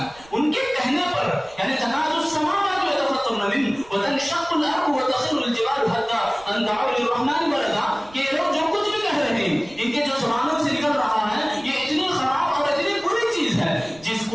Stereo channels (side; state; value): right; noise; rumble, 25 dB below the sound